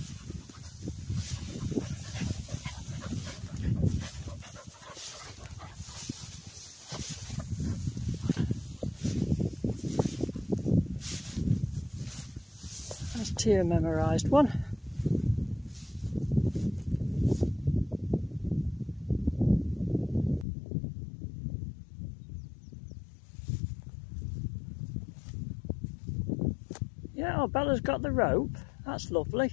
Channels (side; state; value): right; drops out; at 20.5 s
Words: That's Tia memorised one. Yeah, oh, Bella's got the rope. That's lovely.